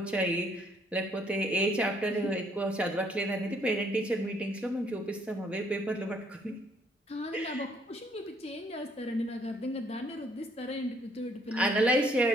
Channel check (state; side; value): normal; both; correlation 0.66